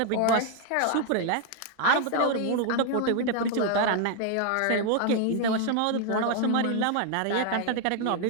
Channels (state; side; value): different; both; correlation 0.00